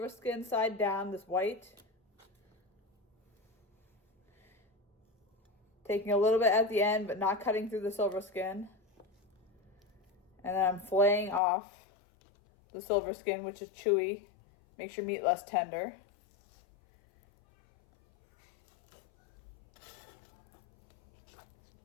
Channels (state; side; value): drops out; right; at 11.4 s